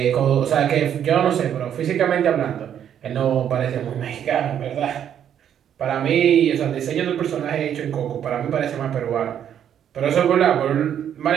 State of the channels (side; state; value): left; quieter; 9.4 dB